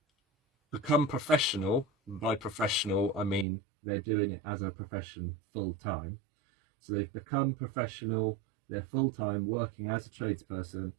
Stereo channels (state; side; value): drops out; left; at 3.5 s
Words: become professional. By professional, I mean they're doing it as a profession full time. So they've become professional, they're full time working as a tradesperson,